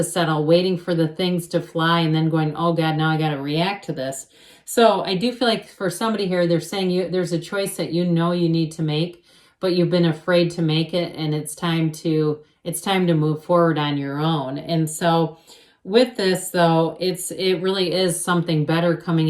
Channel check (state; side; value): identical; both; correlation 1.00